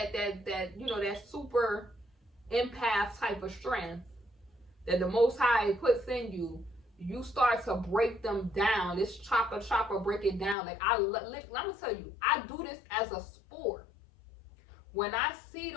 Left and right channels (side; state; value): right; drops out; at 10.6 s